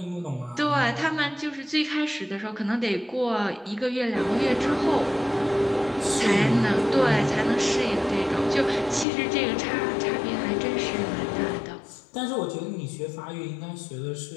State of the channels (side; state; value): right; drops out; at 9.1 s